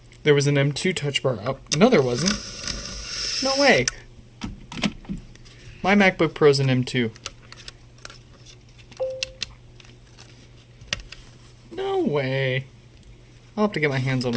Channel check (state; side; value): identical; both; correlation 1.00